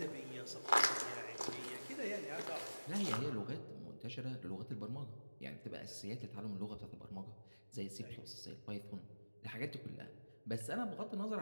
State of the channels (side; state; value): both; inverted; correlation -1.00